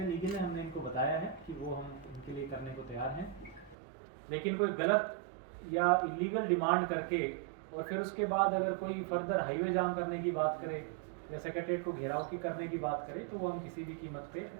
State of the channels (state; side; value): drops out; left; at 3.8 s